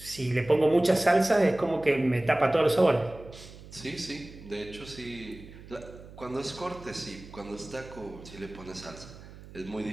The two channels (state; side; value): noise; right; hum, 18 dB below the sound